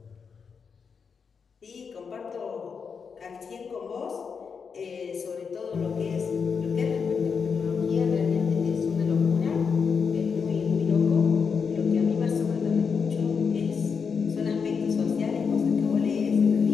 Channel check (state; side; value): quieter; right; 5.9 dB